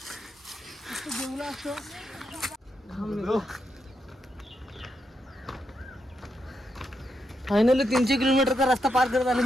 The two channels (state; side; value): normal; both; correlation 0.82